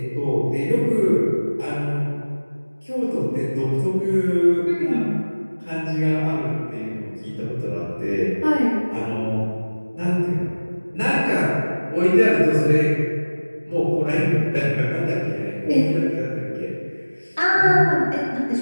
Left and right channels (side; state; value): both; inverted; correlation -1.00